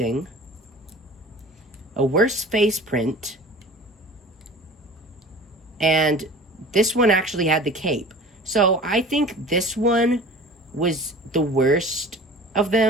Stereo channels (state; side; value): normal; both; correlation 0.42